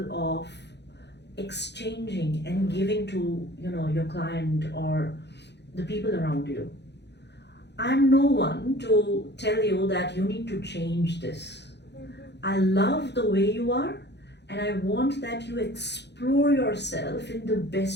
of exchanging and giving to, your client or the people around you. I'm no one to tell you that you need to change this. I love the way you are, and I want that you explore yourself in the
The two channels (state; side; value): late; right; 0.50 ms